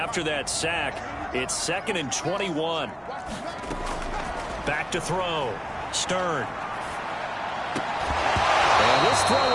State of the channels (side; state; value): both; identical; correlation 1.00